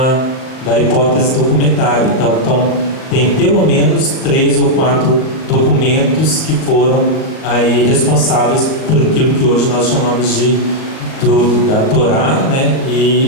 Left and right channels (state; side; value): late; right; 38 ms